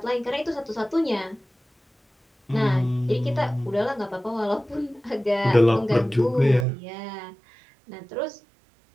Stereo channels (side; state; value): left; drops out; at 6.7 s